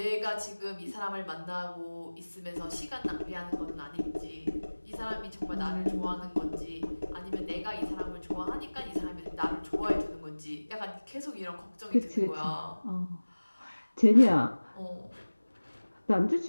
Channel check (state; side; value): inverted; both; correlation -1.00